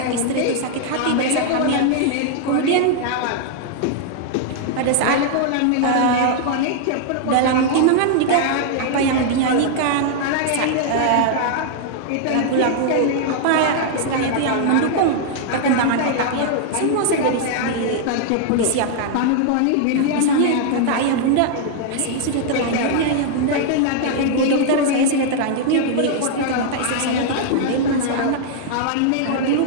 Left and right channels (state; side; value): different; both; correlation -0.01